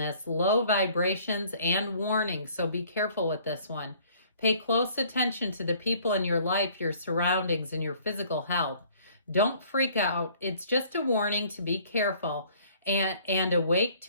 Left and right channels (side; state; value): both; inverted; correlation -0.56